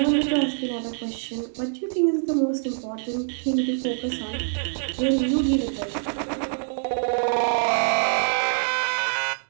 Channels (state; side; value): silent; left; digital silence